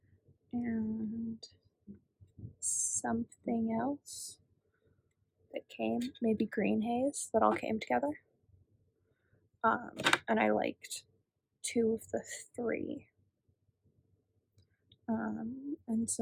and something else that came, maybe green haze, that all came together. And I liked 2 of the 3. And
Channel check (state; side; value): identical; both; correlation 1.00